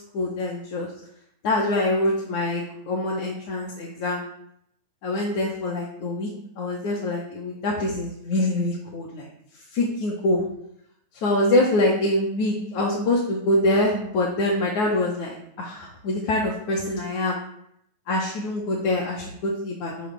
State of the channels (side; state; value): right; late; 9.4 ms